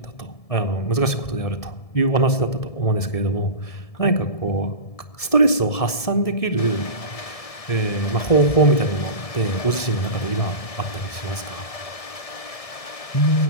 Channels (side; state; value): right; late; 1.7 ms